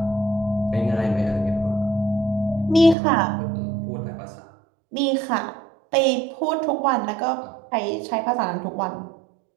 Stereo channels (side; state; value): left; drops out; at 3.0 s